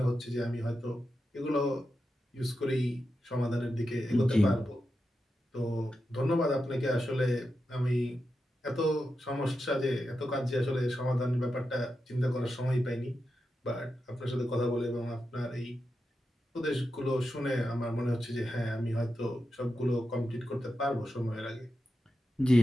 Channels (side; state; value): both; normal; correlation 0.89